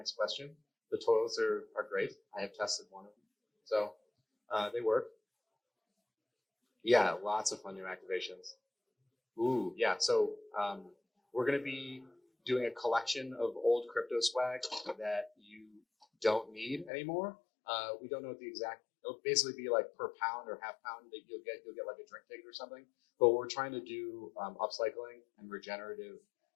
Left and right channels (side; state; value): right; drops out; at 16.9 s